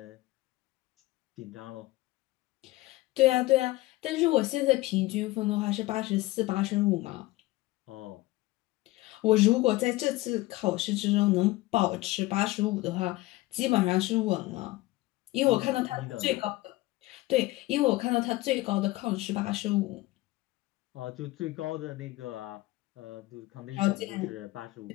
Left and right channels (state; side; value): quieter; right; 18.9 dB